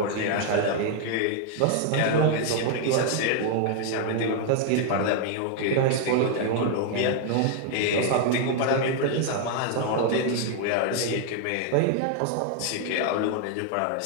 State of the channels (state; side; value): different; both; correlation 0.00